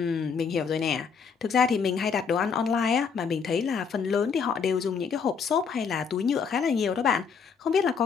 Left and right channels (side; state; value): right; quieter; 6.1 dB